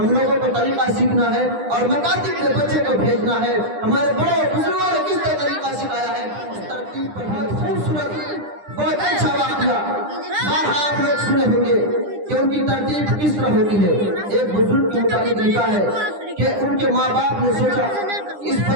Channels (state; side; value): late; left; 9.9 ms